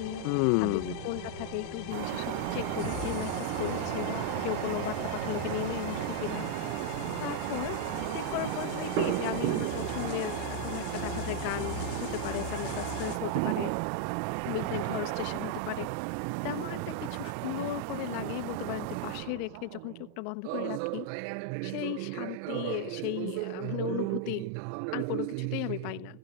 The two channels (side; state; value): both; different; correlation -0.01